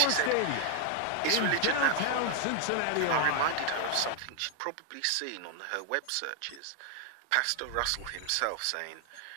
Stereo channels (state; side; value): different; both; correlation 0.00